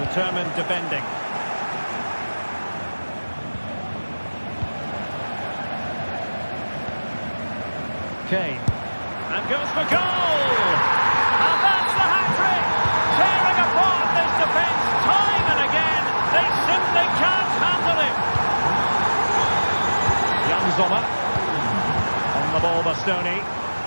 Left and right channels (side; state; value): both; inverted; correlation -1.00